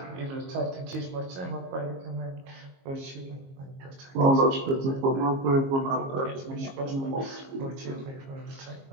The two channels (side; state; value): left; late; 22 ms